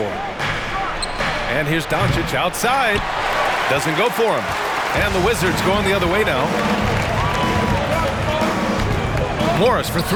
And here's Doncic outside. Doesn't go for him. And the Wizards going the other way now. Morris for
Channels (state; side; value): identical; both; correlation 1.00